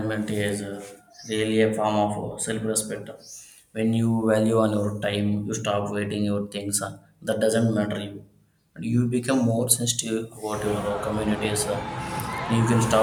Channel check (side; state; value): both; identical; correlation 1.00